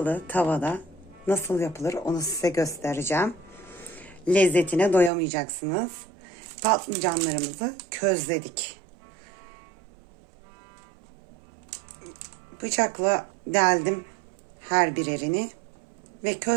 tavada nasıl yapılır onu size göstereceğim. Lezzetine doyamayacaksınız. Patlıcanlarımızı közledik. Bıçakla deldim her birerini ve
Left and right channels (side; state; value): left; drops out; at 5.1 s